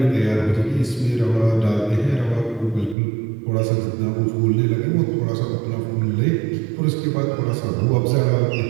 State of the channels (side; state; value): left; drops out; at 3.0 s